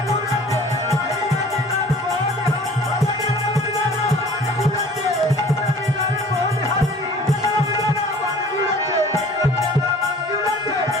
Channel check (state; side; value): normal; both; correlation 0.48